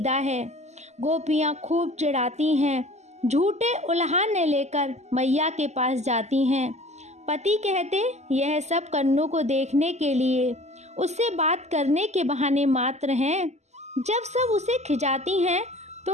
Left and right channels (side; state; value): left; late; 0.33 ms